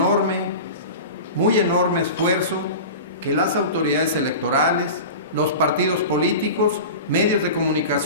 muy enorme esfuerzo que las autoridades electorales, los partidos políticos, medios de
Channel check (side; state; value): both; inverted; correlation -0.32